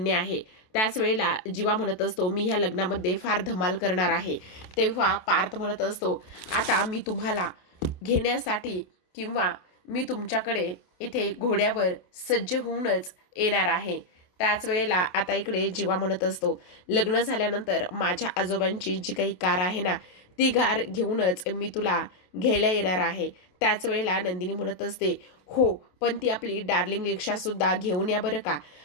आहे. त्याच वेळेला जीवा म्हणत असतो, मी ह्या लग्नामध्ये फार धमाल करणार आहे. तेव्हा पार्थ म्हणत असतो, आता मी तुम्हाला घेण्यासाठी किंवा मी तुमच्याकडे इथे घोड्यावर सज्ज होऊनच येणार आहे. त्याच वेळेला आता इकडे जीवा म्हणत असतो, लग्न झाल्यानंतर माझ्या आजोबांची जी काही कार आहे ना, ती कार घेऊनच मी तुला घ्यायला येणार आहे. त्याच वेळेला नंदिनी म्हणत असते, हो पण ती आपली डार्लिंग रिक्षासुद्धा घेऊन या बरं का.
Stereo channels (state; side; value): late; right; 27 ms